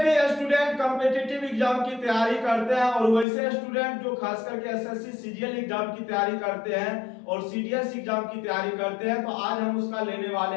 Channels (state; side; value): drops out; right; at 3.2 s